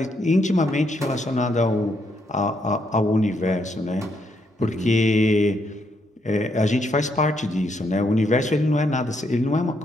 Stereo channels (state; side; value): normal; both; correlation 0.76